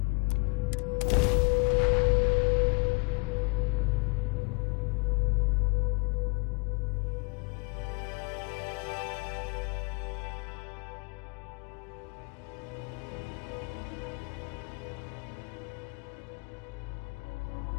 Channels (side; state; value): right; quieter; 31.1 dB